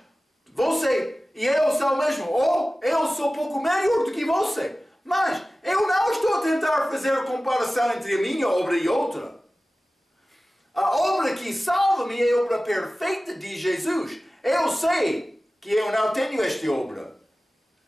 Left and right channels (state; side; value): normal; both; correlation 0.96